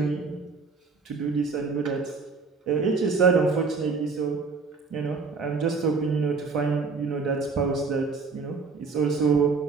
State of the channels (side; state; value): left; quieter; 4.6 dB